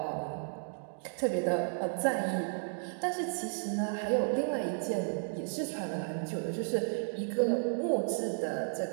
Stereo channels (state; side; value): silent; left; digital silence